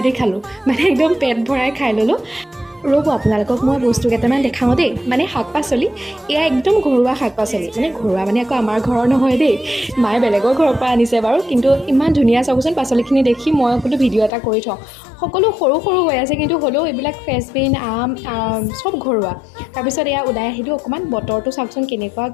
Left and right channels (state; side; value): drops out; right; at 14.3 s